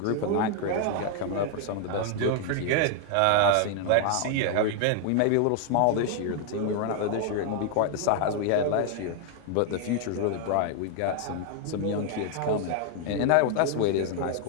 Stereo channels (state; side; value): different; both; correlation 0.00